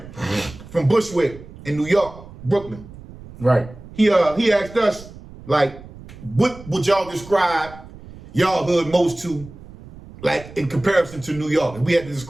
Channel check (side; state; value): right; noise; rumble, 17 dB below the sound